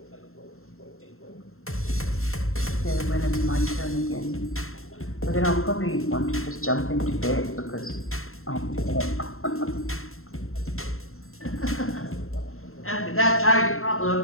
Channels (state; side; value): late; right; 0.62 ms